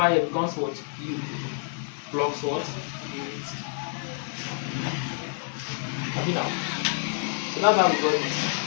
here becomes what? U plus what? 8. Have you now? So that's how we got this.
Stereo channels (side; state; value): right; silent; 56 dB below the other